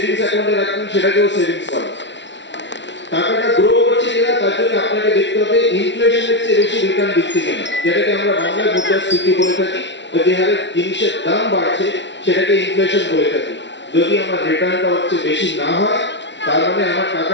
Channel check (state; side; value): late; right; 0.52 ms